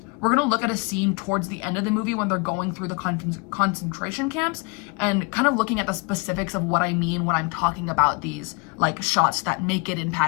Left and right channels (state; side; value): quieter; right; 30.5 dB